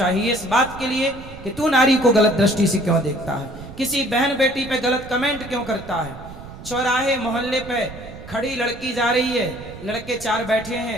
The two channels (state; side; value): noise; right; rumble, 15 dB below the sound